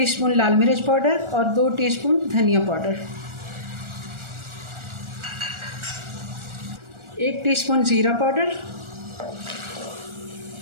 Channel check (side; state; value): left; late; 1.4 ms